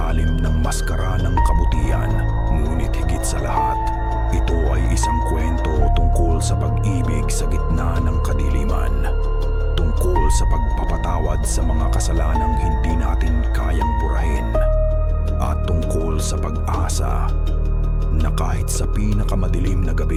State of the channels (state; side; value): identical; both; correlation 1.00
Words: ng maskara ng kabutihan. Ngunit higit sa lahat, ito ay isang kwento tungkol sa pag-ibig sa gitna ng kadiliman. Tungkol sa pagpapatawad sa mga kasalanang hindi natin kayang burahin. At tungkol sa pag-asa na kahit sa pinakamadilim na